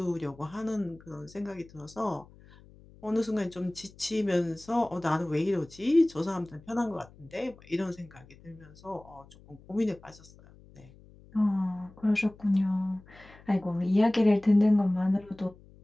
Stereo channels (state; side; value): noise; left; hum, 24 dB below the sound